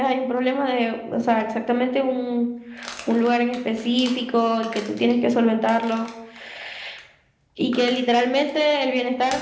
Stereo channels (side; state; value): both; identical; correlation 1.00